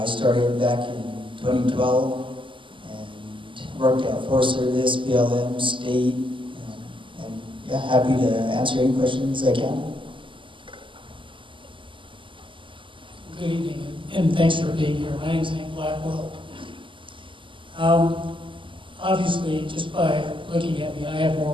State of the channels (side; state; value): left; late; 0.25 ms